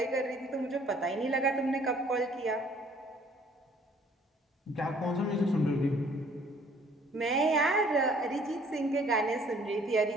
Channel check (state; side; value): normal; both; correlation 0.58